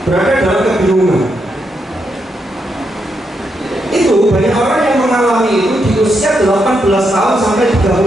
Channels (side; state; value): both; normal; correlation 0.81